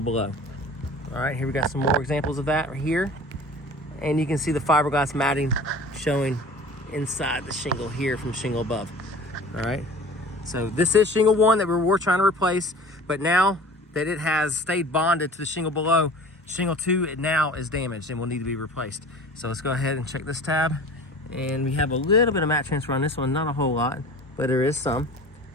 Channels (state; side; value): normal; both; correlation 0.42